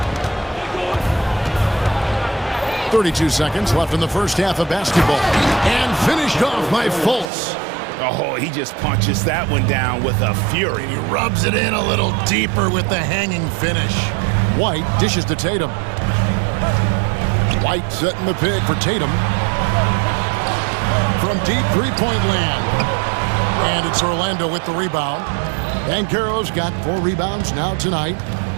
32 seconds left in the first half of basketball. And finished off by Fultz. Oh, he just punches that one down with a fury. He rubs it in a little deeper with the hanging finish. White dishes to Tatum. White setting the pick for Tatum. From deep three-point land. And it's Orlando with the rebound. Banchero's got 4 rebounds now tonight.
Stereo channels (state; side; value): drops out; left; at 7.2 s